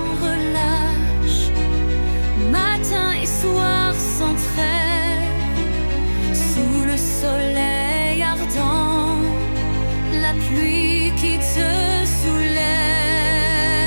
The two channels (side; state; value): both; inverted; correlation -1.00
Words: relâche, matin et soir sans trêve, sous le soleil ardent, la pluie qui te soulève.